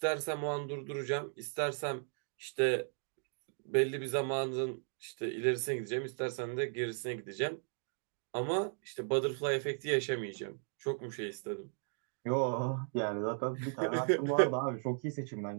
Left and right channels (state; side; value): silent; left; 54 dB below the other